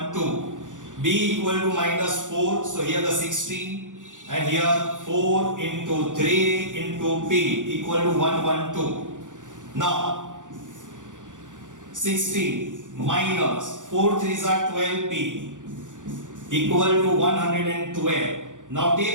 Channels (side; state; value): left; late; 0.87 ms